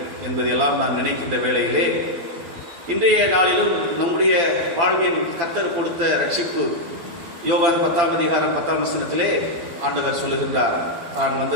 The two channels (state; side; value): late; left; 12 ms